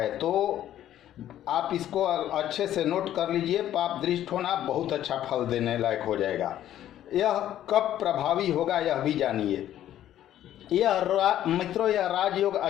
तो आप इसको अच्छे से नोट कर लीजिए, पाप दृष्ट होना बहुत अच्छा फल देने लायक हो जाएगा। यह कब प्रभावी होगा यह भी जानिए। मित्रों, यह राजयोग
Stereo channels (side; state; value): right; quieter; 12.0 dB